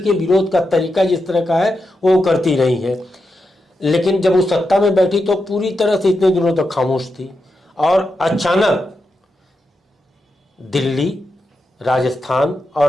विरोध का तरीका जिस तरह का है वो करती रही है। लेकिन जब वो सत्ता में बैठी तो पूरी तरह से इतने दिनों तक खामोश थी और अचानक दिल्ली, राजस्थान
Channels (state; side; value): normal; both; correlation 0.87